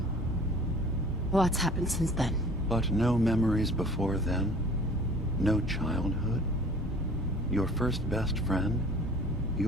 a lot's happened since then. But no memories before then? No childhood? Your first best friend?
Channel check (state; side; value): normal; both; correlation 0.48